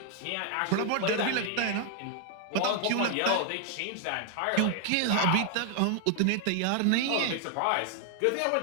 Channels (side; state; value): both; different; correlation 0.00